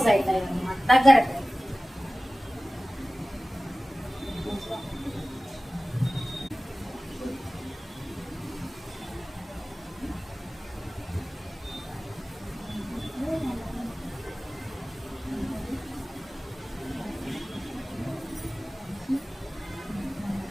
అవుతాయి అన్నమాట, దగ్గర.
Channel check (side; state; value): both; normal; correlation 0.97